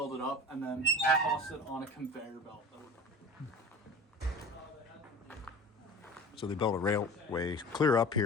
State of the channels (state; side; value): normal; both; correlation 0.36